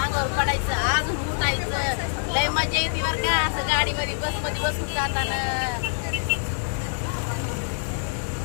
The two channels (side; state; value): right; silent; digital silence